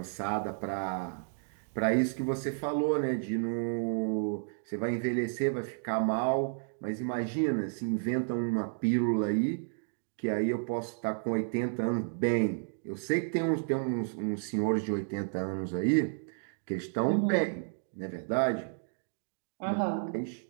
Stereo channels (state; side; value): silent; left; digital silence